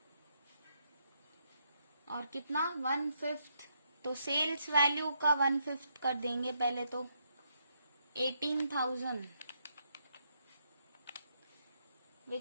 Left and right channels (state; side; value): inverted; both; correlation -0.77